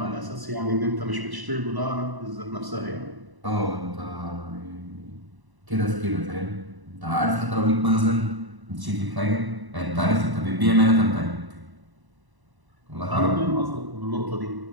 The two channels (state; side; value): late; left; 1.0 ms